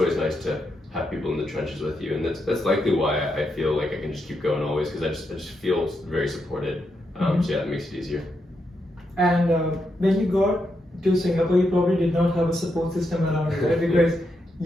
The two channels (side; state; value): both; normal; correlation 0.83